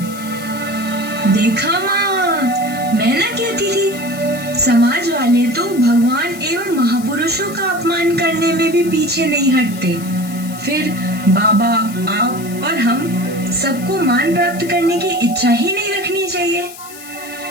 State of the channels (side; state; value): left; noise; hiss, 16 dB below the sound